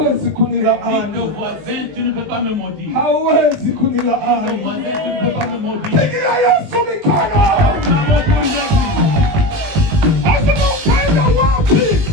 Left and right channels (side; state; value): left; late; 20 ms